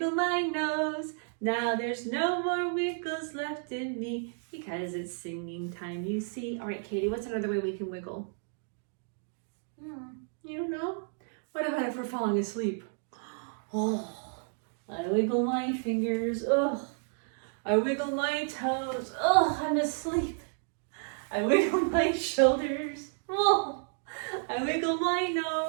my nose. Now there's no more wiggles left in me because it's singing time, you see. All right, Katie, what's another way we can wiggle? You don't know? What about if we're falling asleep? Oh, I wiggle my fingers. Oh, I wiggle my toes. Oh, I'm asleep. I wiggle my shoulders. Oh, I wiggle my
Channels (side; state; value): left; silent; 57 dB below the other